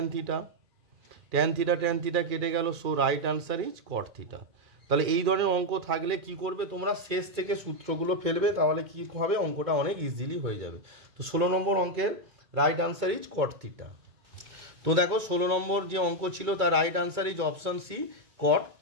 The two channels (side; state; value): left; late; 2.2 ms